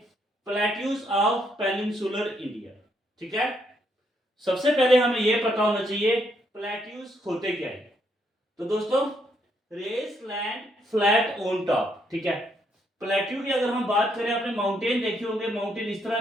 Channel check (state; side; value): normal; both; correlation 0.74